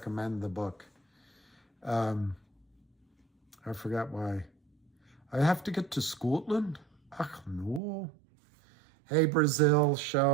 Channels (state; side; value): drops out; left; at 7.8 s